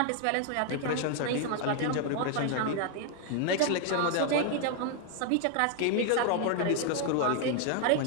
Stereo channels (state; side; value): different; both; correlation 0.00